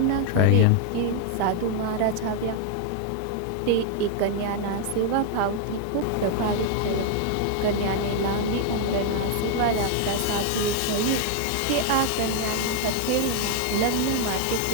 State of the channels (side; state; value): both; different; correlation 0.00